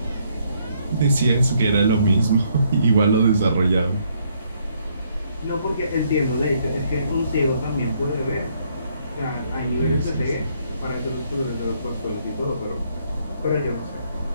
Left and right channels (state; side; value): inverted; both; correlation -0.70